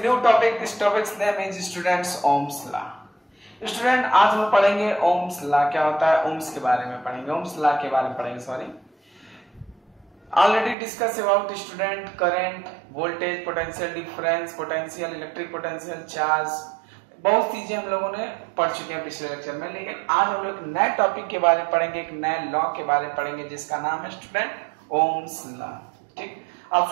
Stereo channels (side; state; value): left; drops out; at 10.8 s